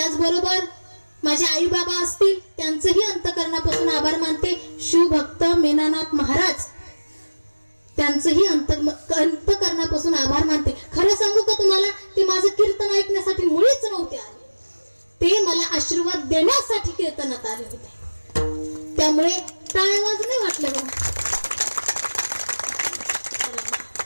माझे आई बाबा असतील, त्यांचंही अंतकरणापासून आभार मानते. शिवभक्त मेनानाथ महाराज, त्यांचंही अंतकरणापासून आभार मानते. खरं सांगू का तुम्हाला, ते माझं कीर्तन ऐकण्यासाठी मुळीच नव्हते आले. ते मला आशीर्वाद देण्यासाठी कीर्तनात आले होते. त्यामुळे टाळ्या वाजणे वाटलं बघ.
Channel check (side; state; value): both; inverted; correlation -1.00